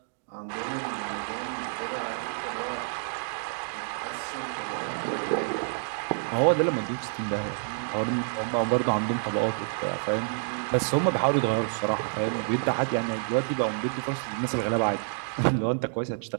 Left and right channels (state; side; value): silent; left; 59 dB below the other